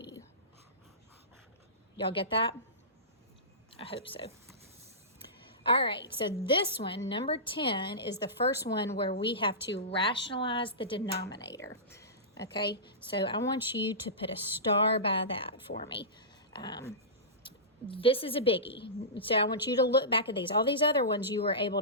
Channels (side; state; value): both; normal; correlation -0.20